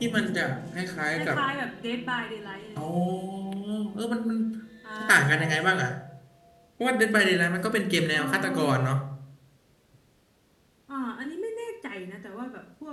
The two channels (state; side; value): identical; both; correlation 1.00